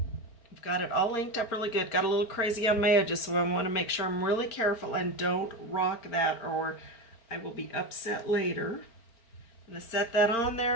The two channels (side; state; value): right; late; 4.4 ms